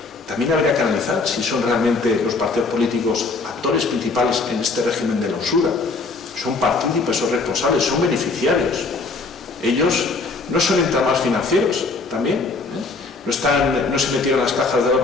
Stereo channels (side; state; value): right; quieter; 3.9 dB